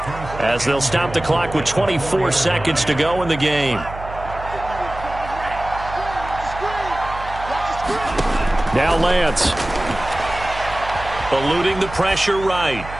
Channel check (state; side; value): noise; right; hum, 12 dB below the sound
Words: as they'll stop the clock with 24 seconds to go in the game. Now Lance. Eluding the pressure right.